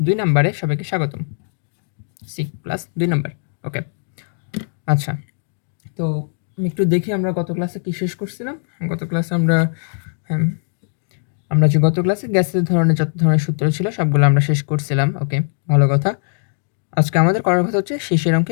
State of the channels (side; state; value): right; silent; digital silence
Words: ২ নম্বরে সবাইকে স্বাগতম। সিক প্লাস ২ নম্বর। ওকে, আচ্ছা। তো আমি একটু দেখি আমরা গত ক্লাসে কি শেষ করছিলাম। গত ক্লাসে আমরা যে গত ক্লাসে গ্যাসের ধরনের যত ধরনের সূত্র ছিল সবগুলো আমরা শেষ করছিলাম। ওকে, ভালো কথা। আজকে আমাদের করার কথা হচ্ছে শিশির অঙ্ক